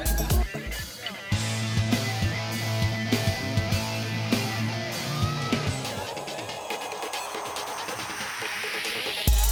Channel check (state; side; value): identical; both; correlation 1.00